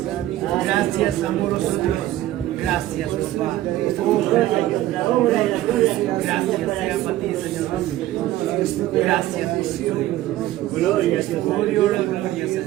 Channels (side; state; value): left; quieter; 14.7 dB